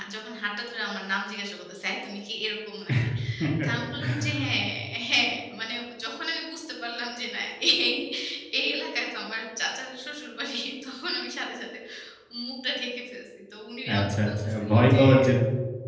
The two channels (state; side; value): identical; both; correlation 1.00